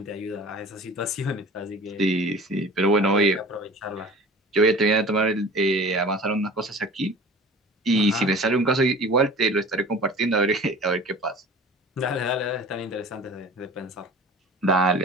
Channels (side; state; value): both; normal; correlation 0.41